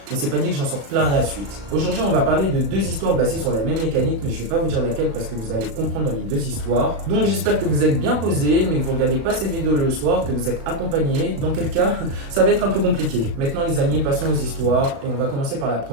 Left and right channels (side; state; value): left; late; 36 ms